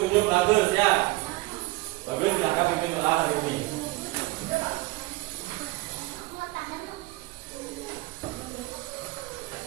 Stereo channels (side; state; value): left; quieter; 21.6 dB